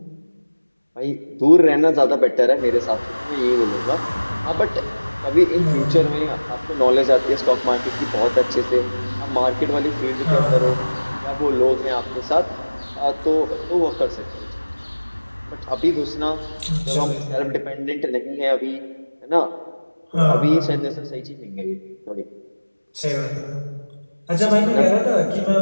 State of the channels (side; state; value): both; inverted; correlation -1.00